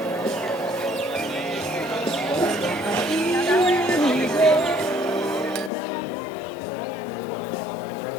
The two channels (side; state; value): right; drops out; at 5.7 s